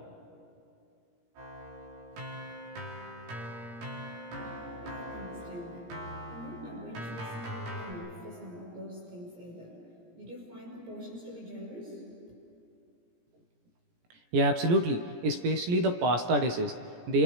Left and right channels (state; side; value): late; left; 17 ms